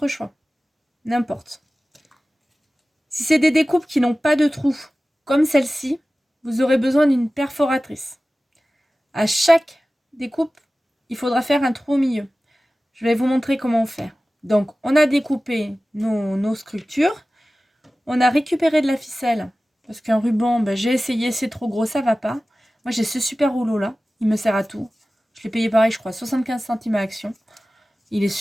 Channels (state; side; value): normal; both; correlation 0.96